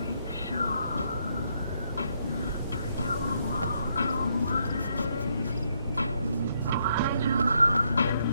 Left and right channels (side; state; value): both; inverted; correlation -0.75